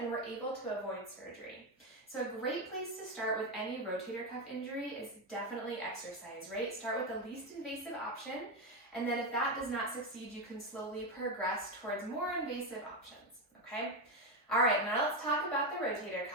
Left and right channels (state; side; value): normal; both; correlation 0.10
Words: were able to avoid surgery. So a great place to start with any rotator cuff injury is definitely exercise, right? Start with the least invasive option, and then if that does not succeed, you can slowly progress towards more invasive options, okay? All right, now let's talk about the rotator